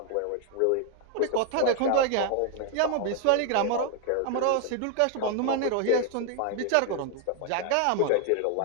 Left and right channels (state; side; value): different; both; correlation 0.00